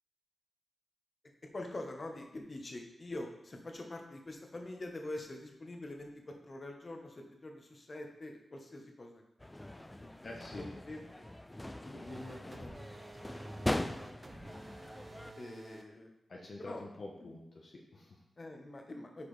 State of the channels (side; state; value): both; normal; correlation 0.96